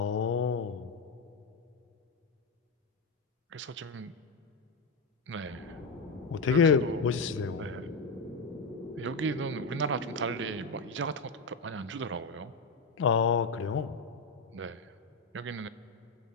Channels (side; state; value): right; quieter; 3.7 dB